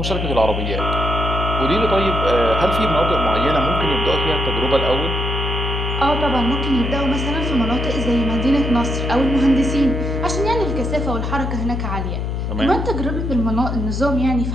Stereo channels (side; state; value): left; noise; hum, 2 dB below the sound